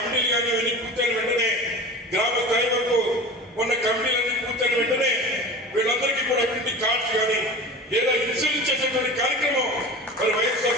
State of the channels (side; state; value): both; normal; correlation 0.35